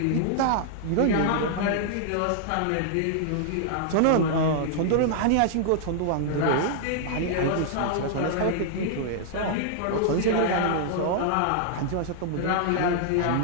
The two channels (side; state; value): both; different; correlation -0.01